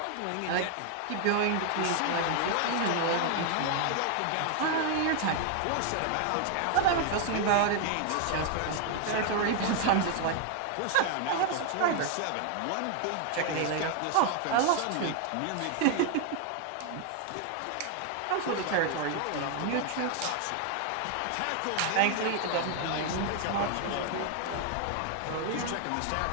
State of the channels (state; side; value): different; both; correlation 0.00